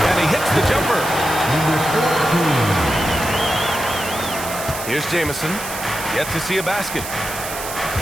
and he hits the jumper. Here's Jamison, yet to see a basket.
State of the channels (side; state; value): right; noise; hiss, 9 dB below the sound